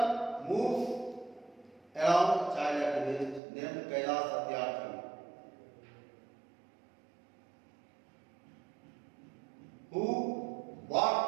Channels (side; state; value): left; drops out; at 3.4 s